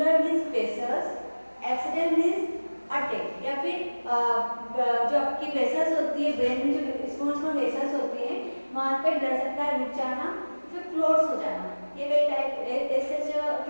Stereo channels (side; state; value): both; inverted; correlation -1.00